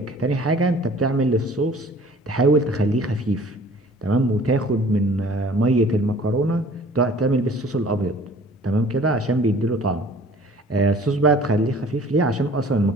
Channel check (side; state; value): both; normal; correlation 0.51